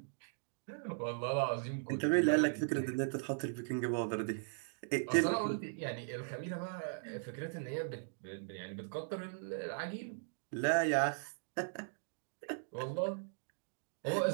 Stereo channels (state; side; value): silent; left; digital silence